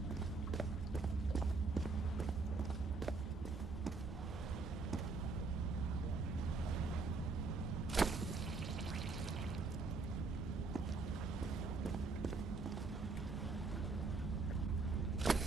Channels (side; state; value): left; quieter; 4.0 dB